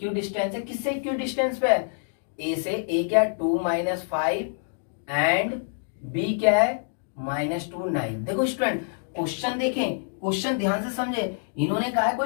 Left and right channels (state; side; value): silent; right; digital silence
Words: है, किससे इक्विडिस्टेंस पे है, A से। A क्या है 2 -5 एंड B क्या है -2 9। देखो स्टूडेंट क्वेश्चन देखें, क्वेश्चन ध्यान से समझे, इन्होंने कहा है